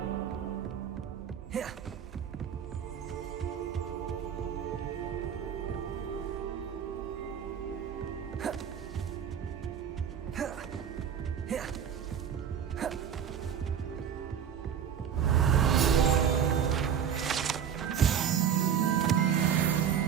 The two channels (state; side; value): quieter; left; 8.4 dB